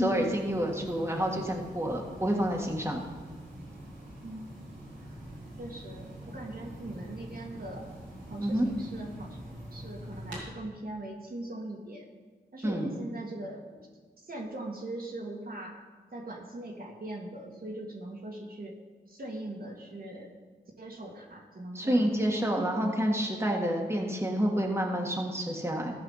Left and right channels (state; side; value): normal; both; correlation 0.80